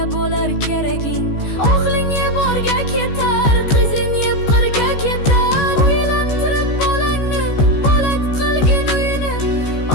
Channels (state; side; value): late; right; 14 ms